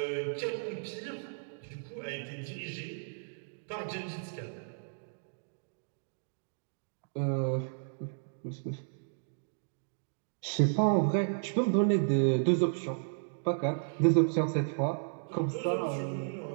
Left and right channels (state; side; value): silent; left; digital silence